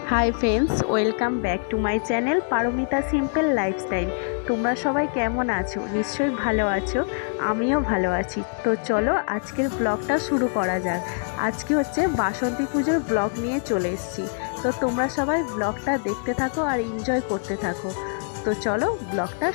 High friends, welcome back to my channel Paromita simple lifestyle. তোমরা সবাই কেমন আছো? নিশ্চয়ই ভালো আছো, আমিও ভালো আছি। তো চলো আজকের ব্লগটা শুরু করা যাক। আজকে হচ্ছে বাসন্তী পুজোর ব্লগ নিয়ে চলে এসেছি। তো তোমরা সবাই ব্লগটা দেখতে থাকো আর এনজয় করতে থাকো। তো চলো ব্লগটা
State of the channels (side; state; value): right; silent; digital silence